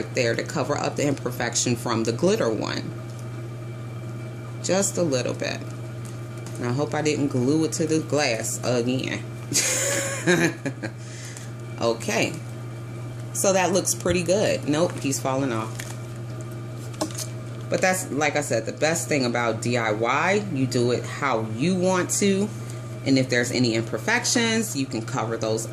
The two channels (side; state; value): both; identical; correlation 1.00